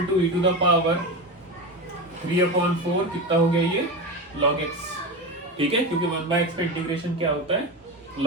to e to the power 3/4 कितना हो गया ये log x, ठीक है, क्योंकि 1/x का इंटीग्रेशन क्या होता है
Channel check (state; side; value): normal; both; correlation 0.21